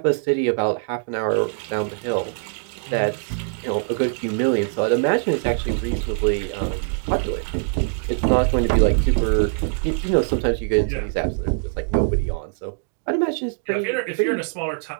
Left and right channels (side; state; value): left; silent; 64 dB below the other